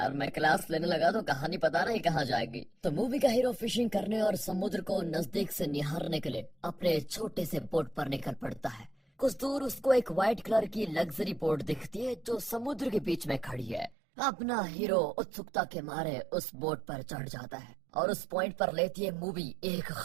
मैं क्लास लेने लगा तो कहानी पता नहीं कहाँ जाएगी। तो मूवी का हीरो फिशिंग करने और समुद्र को नजदीक से निहारने के लिए अपने छोटे से बोट पर निकल पड़ता है। कुछ दूर उसको एक व्हाइट कलर की लग्जरी बोट दिखती है जो समुद्र के बीच में खड़ी है। अपना हीरो उत्सुकता के मारे उस बोट पर चढ़ जाता है और उस पॉइंट पर लेती है मूवी एक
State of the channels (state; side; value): drops out; left; at 14.0 s